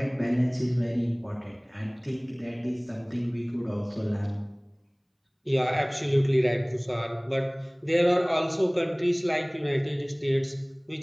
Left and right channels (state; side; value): identical; both; correlation 1.00